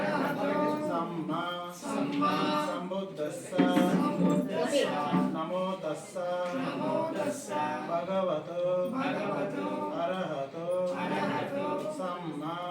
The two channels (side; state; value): both; identical; correlation 1.00